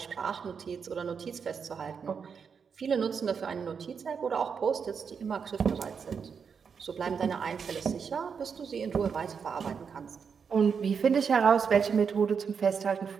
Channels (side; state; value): left; quieter; 6.3 dB